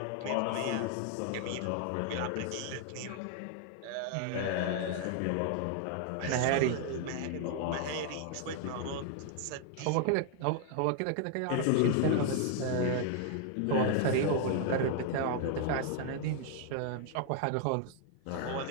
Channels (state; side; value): different; both; correlation 0.00